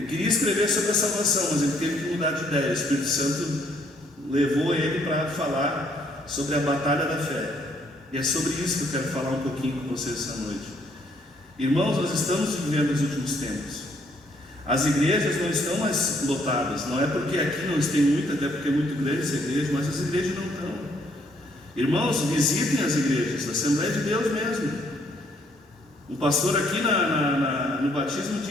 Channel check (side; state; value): both; normal; correlation 0.68